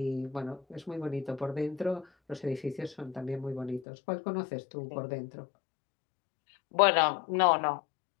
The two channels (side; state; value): right; drops out; at 3.9 s